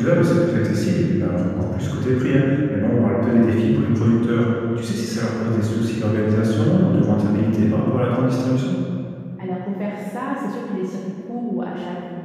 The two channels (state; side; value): identical; both; correlation 1.00